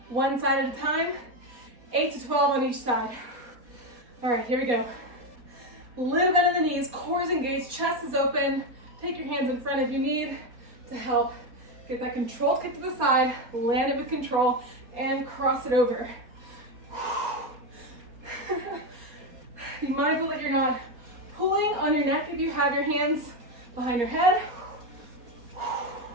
One side at a time, 8 to 12 on each side. All right, here we go. Little bend in the knees, core is engaged, chest is open. Take your hands in front if you need to help get that control kick to the side, land it with control, and cross it over. Be mindful that you're not pulling on your neck if you have your hands behind your head.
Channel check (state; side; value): late; left; 4.2 ms